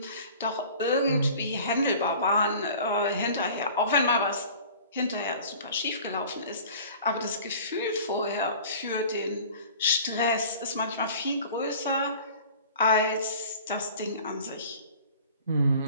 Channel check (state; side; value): inverted; both; correlation -0.44